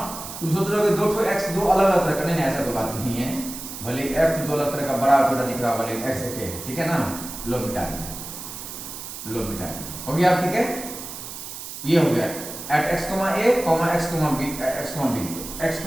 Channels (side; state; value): right; noise; hiss, 10 dB below the sound